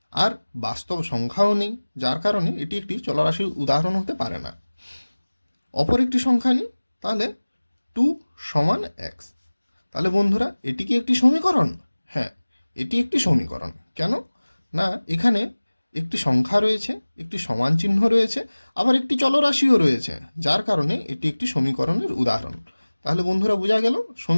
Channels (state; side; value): inverted; both; correlation -1.00